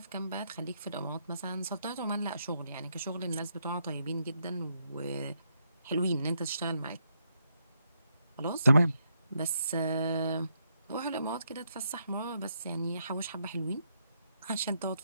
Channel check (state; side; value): inverted; both; correlation -0.77